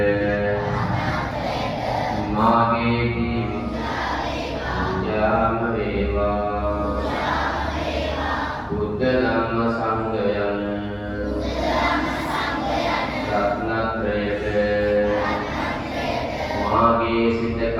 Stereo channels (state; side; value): identical; both; correlation 1.00